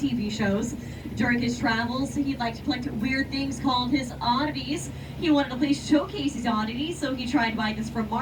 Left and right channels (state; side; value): identical; both; correlation 1.00